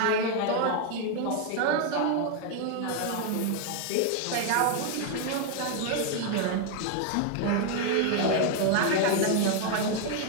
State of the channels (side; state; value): both; different; correlation 0.01